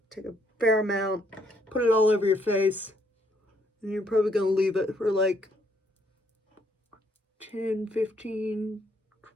Take a fair amount, put it all over your face. And you're probably going to leave it for like 10, 15,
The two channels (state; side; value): normal; both; correlation 0.70